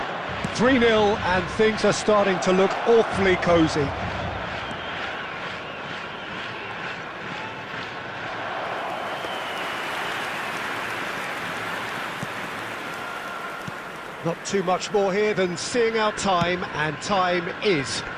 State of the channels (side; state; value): both; identical; correlation 1.00